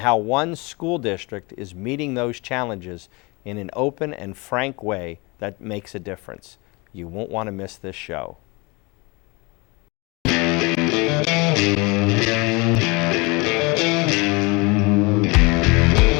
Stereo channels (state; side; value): quieter; right; 27.1 dB